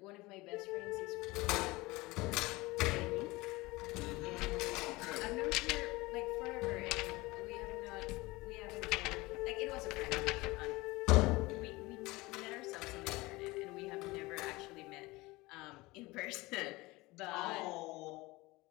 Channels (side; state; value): right; quieter; 21.8 dB